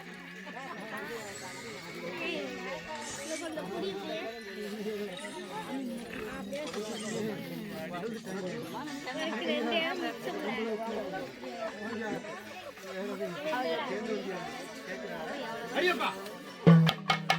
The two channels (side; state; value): both; identical; correlation 1.00